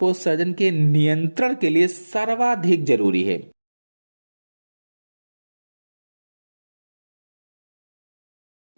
के नियंत्रण के लिए सर्वाधिक जरूरी है?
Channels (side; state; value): both; inverted; correlation -1.00